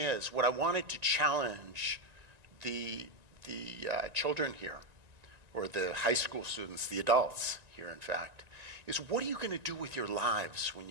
what I wanted to challenge the children here, or the high school students, the adults here in fact, is what are you going to do with your lives when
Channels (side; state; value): left; late; 1.9 ms